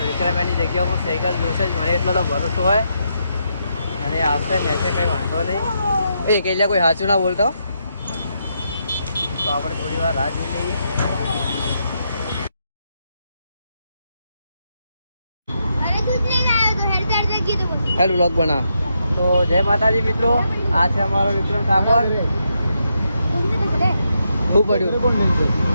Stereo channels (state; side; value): inverted; both; correlation -0.81